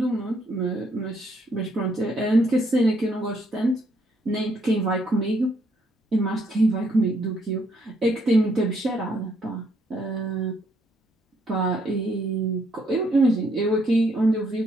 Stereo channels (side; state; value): both; normal; correlation 0.71